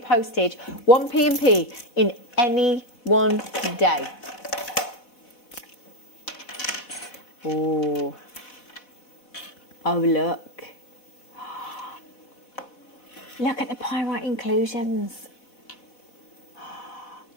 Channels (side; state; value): right; late; 4.0 ms